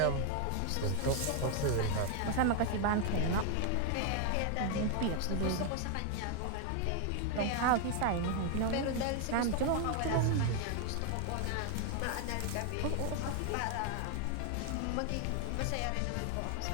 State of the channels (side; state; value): both; different; correlation 0.00